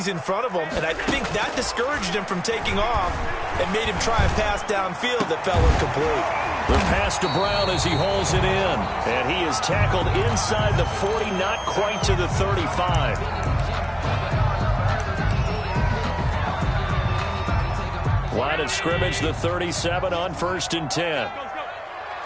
in front of them, and I think that discouraged him from taking off and made him try a pass downfield that fell incomplete. The pass to Brown as he hauls it in, and he is tackled inside the 40, not quite to the 35. Line of scrimmage, the 37 on 1st and 10.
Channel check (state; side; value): identical; both; correlation 1.00